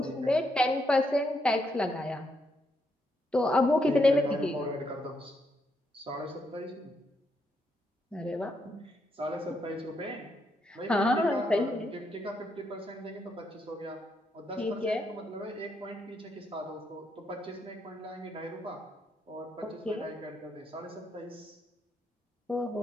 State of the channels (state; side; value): normal; both; correlation 0.78